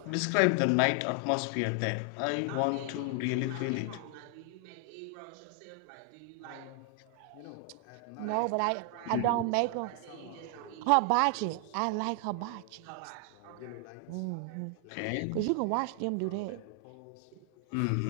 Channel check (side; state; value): both; different; correlation 0.00